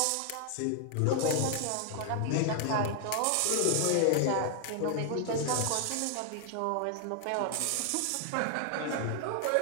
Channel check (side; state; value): both; different; correlation 0.00